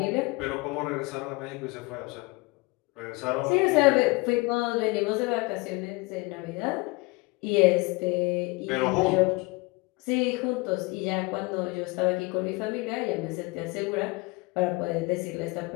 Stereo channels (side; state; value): right; quieter; 25.4 dB